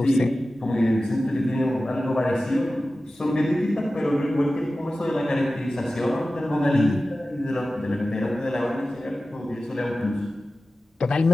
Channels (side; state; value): both; normal; correlation 0.95